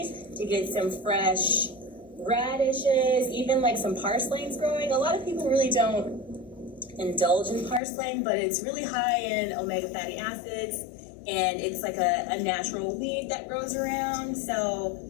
to get some fresh radishes, even like some parsley's growing. A lot of people really don't indulge in parsley, but it's really high in omega fatty acids. And it's like a natural weed that grows around. So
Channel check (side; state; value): right; drops out; at 7.8 s